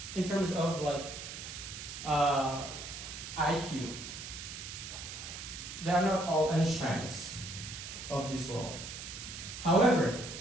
in terms of IQ. They are not all Einsteins of this world. However,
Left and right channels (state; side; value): noise; right; hiss, 9 dB below the sound